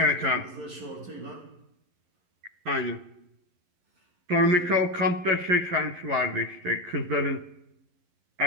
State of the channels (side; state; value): left; late; 11 ms